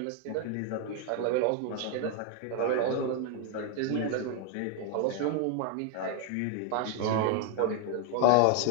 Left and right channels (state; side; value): different; both; correlation 0.00